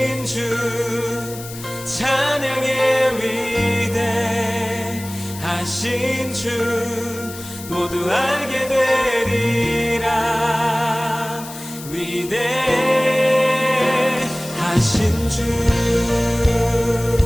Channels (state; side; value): noise; left; hiss, 14 dB below the sound